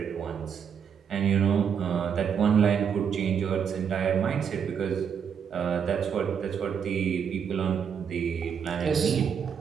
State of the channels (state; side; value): quieter; left; 7.4 dB